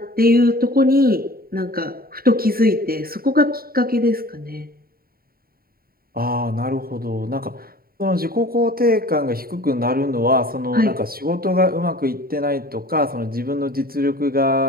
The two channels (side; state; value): left; late; 0.43 ms